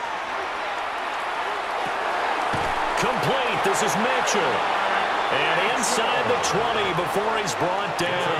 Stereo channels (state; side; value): identical; both; correlation 1.00